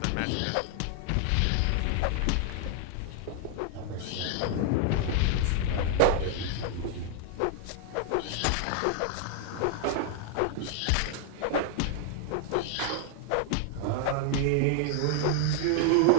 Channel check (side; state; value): both; different; correlation 0.00